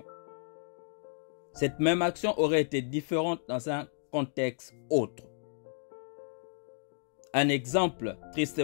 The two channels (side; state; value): right; silent; digital silence